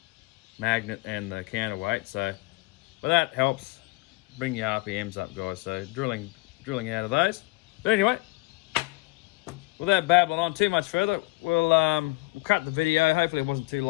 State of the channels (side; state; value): right; quieter; 23.9 dB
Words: magnet and the counterweight, so but that helps bring your RPMs up, guys. So drilling out of those. But anyway, without babbling on too much further, we'll cut the video. Hopefully it wasn't too